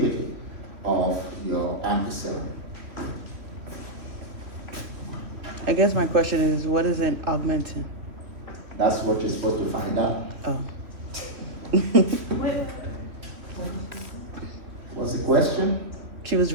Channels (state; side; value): late; left; 3.1 ms